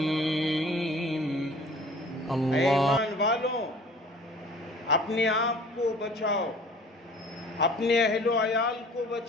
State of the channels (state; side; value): normal; both; correlation 0.48